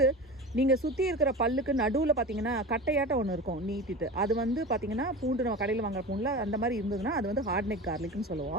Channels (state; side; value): normal; both; correlation 0.30